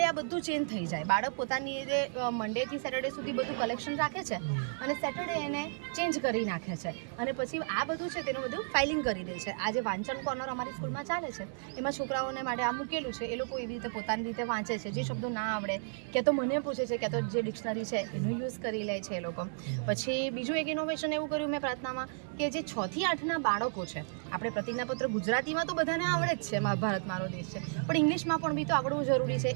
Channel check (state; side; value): silent; left; 56 dB below the other